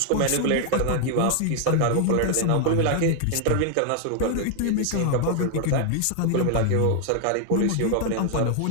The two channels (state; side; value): different; both; correlation 0.00